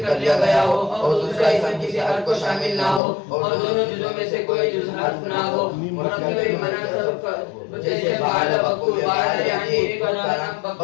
کر لیا گیا ہو اور دوسرا اسم کسی حرف کو شامل نہ ہو اور دونوں جزوں میں سے کوئی جز حرف نہ ہو مرکب مناسب جیسے بعد بکو بعد یعنی ایک کا نام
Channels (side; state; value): right; drops out; at 3.0 s